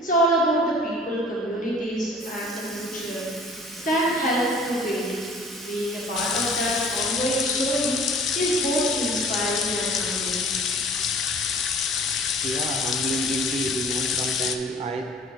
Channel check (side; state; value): both; normal; correlation 0.49